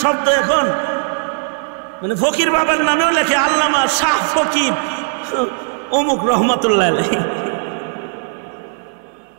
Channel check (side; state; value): left; silent; digital silence